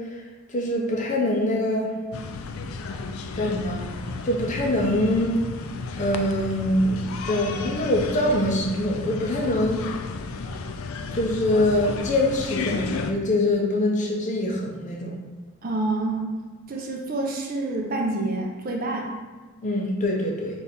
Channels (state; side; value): normal; both; correlation 0.38